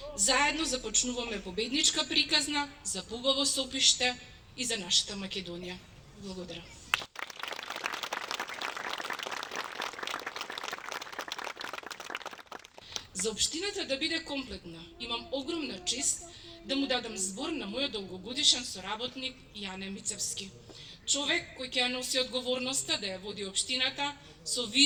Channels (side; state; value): both; identical; correlation 1.00